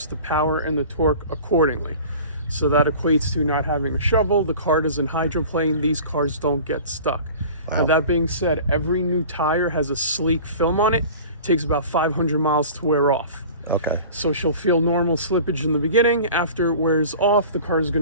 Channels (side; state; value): both; inverted; correlation -0.41